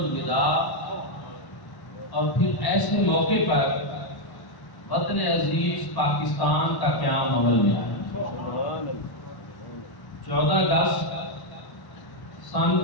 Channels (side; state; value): right; late; 1.1 ms